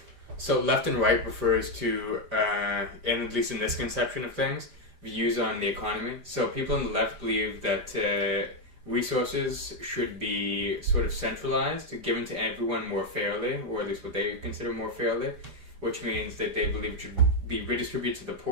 left and right refers to, and at least in this conception of things, views on the economy. So people on the left believe that resources should be sort of centralized, given to everyone more fairly, or at least what they consider more fairly, which means that they believe it should be redistributed to the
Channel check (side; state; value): left; late; 5.0 ms